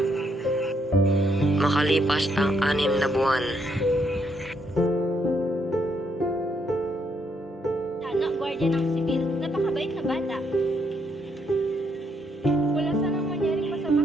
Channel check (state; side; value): normal; both; correlation 0.74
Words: Makalipas ang 6 na buwan. Tano, gwardiya ng sibil. Napakabait na bata. Wala sanang mangyaring masama